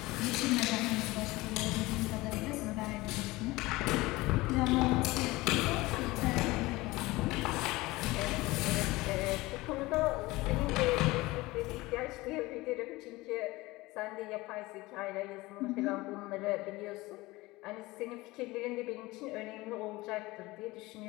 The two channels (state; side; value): quieter; right; 20.6 dB